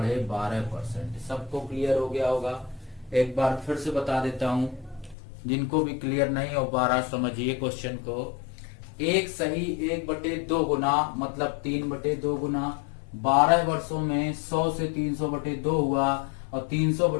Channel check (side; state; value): right; drops out; at 5.2 s